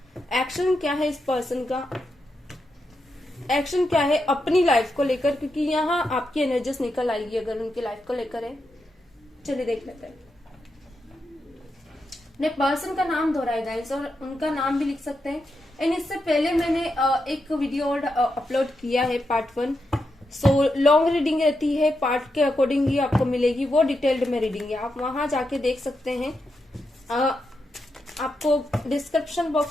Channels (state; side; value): normal; both; correlation 0.85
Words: एक्शन क्या है इस पर्सन का, एक्शन क्या है अपनी लाइफ को लेकर, क्योंकि यहाँ आपकी एनर्जीज निकल आएगी अगर उनकी लाइफ को लेकर है। चलिए देख लेते हैं। ने पर्सन का नाम दोहराया गाइस, और उनका नाम भी लिख सकते हैं। एंड इससे पहले मैंने एक वीडियो और अपलोड किया है पार्ट 1। सो लॉन्ग रीडिंग रहती है, पार्ट के अकॉर्डिंग ही आपको मिलेगी, वो डिटेल्ड में रीडिंग है, आप वहां जाके देख सकते हैं। आपको डिस्क्रिप्शन